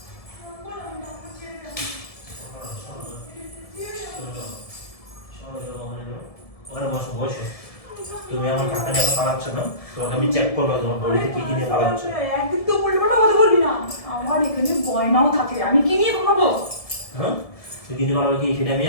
ওখানে বসো বসো। তুমি আমার টাকা নিয়ে পালাচ্ছ না, তোমাকে আমি চেক করবো তোমার বডিতে কি কি নিয়ে পালাচ্ছ। একদিন তো উল্টোপাল্টা কথা বলবি না। আমার এখানে গয়নাও থাকে, আমি কি নিয়ে ঘুমাবো? হ্যাঁ তুই কিনে পালাবে কি সেটা আমি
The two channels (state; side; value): late; right; 1.7 ms